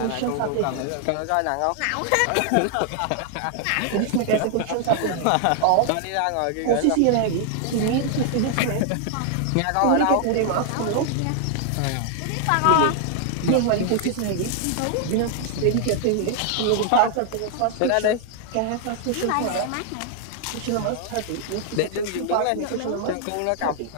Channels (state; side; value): different; both; correlation 0.00